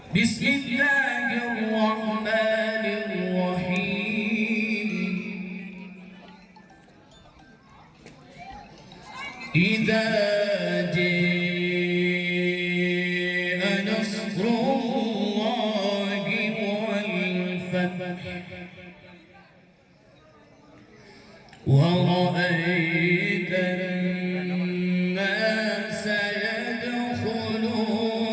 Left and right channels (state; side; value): identical; both; correlation 1.00